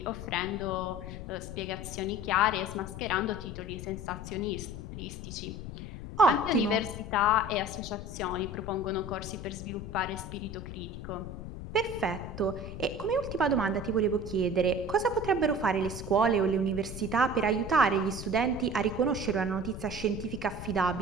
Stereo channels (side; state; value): left; noise; rumble, 9 dB below the sound